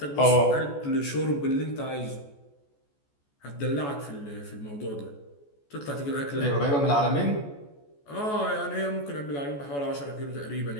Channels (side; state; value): right; late; 14 ms